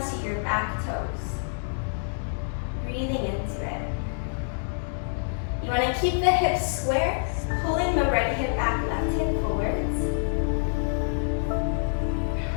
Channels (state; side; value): silent; right; digital silence